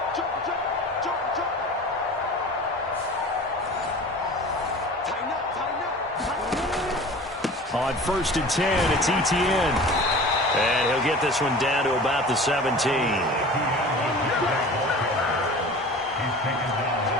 On 1st and 10, it's Etienne. And he'll get this one down to about the 17.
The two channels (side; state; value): both; normal; correlation 0.39